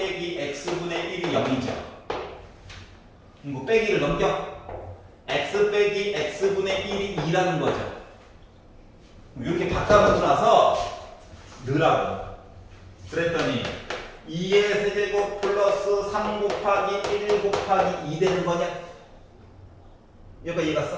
x분의 1이 0이죠. 이거 빼기를 넘겨. x 빼기 x분의 1이 2라는 거죠. 이렇게 바꿔놓고 나서 넣으라고. 그랬더니 2의 세제곱 플러스 3 곱하기 1 곱하기 2 되는 거냐? 여기까지 이해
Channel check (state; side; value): identical; both; correlation 1.00